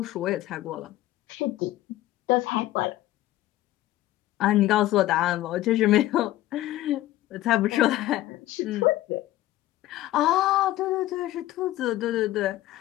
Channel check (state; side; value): quieter; right; 15.4 dB